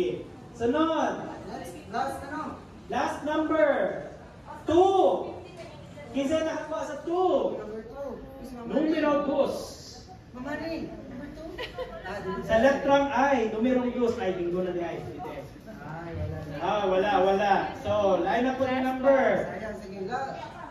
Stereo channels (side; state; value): both; identical; correlation 1.00